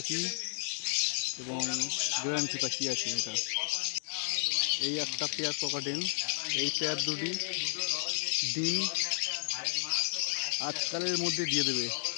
এবং গ্যারান্টি পাখি আছে এটা। এই একটা পেয়ার ককাটেল, এই পেয়ার দুটি ডিম আজকালের মধ্যে দিয়ে দেবে।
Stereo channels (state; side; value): silent; right; digital silence